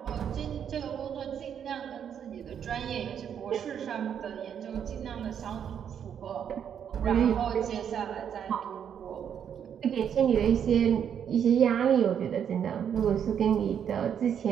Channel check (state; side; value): quieter; left; 8.4 dB